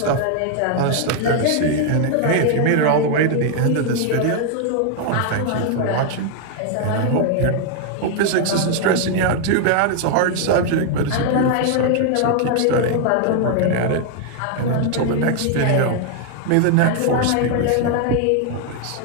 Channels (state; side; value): different; both; correlation 0.00